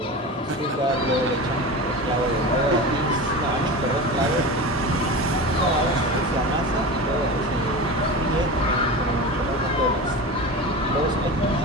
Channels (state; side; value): normal; both; correlation 0.28